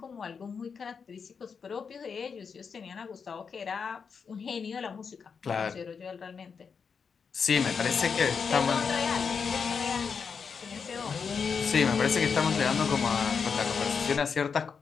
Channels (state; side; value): quieter; right; 6.0 dB